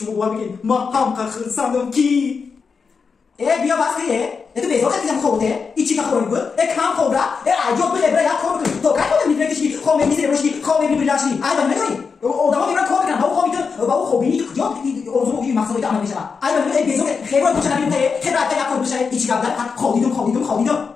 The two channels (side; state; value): right; quieter; 5.4 dB